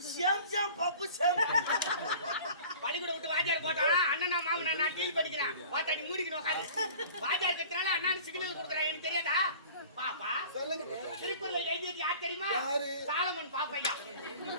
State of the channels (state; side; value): inverted; both; correlation -0.44